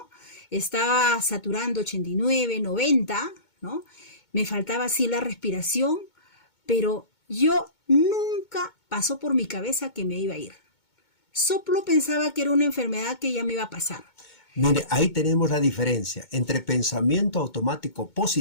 Estaba saturando 89, 90, ¿no? Me faltaba así la respiración, pero yo nunca pasó por mi cabeza que me iba a ir. Solo pensaba que era una enfermedad que ya me iba a pasar. Mire, ahí tenemos la diferencia entre pensamiento automático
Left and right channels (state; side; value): late; right; 2.2 ms